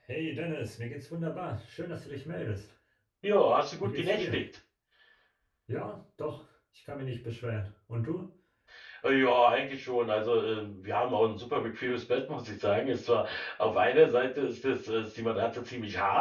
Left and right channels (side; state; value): both; identical; correlation 1.00